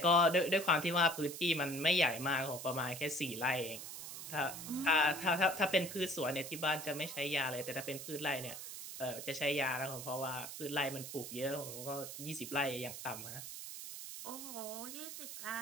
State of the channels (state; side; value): noise; right; hiss, 9 dB below the sound